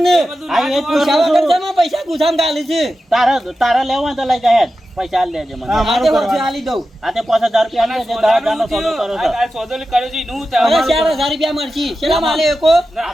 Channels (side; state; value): both; normal; correlation 0.92